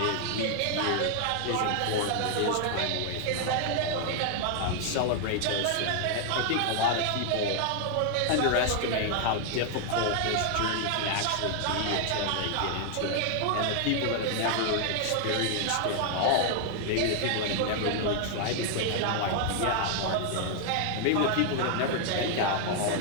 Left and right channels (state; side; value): different; both; correlation 0.00